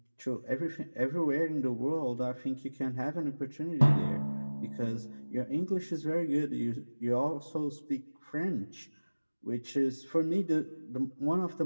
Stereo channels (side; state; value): both; inverted; correlation -1.00